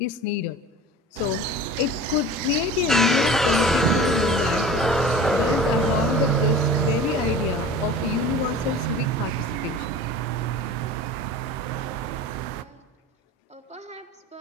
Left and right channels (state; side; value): normal; both; correlation 0.39